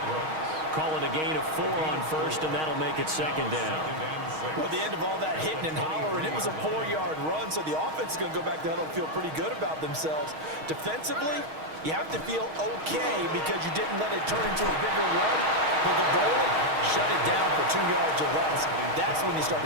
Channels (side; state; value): left; late; 6.4 ms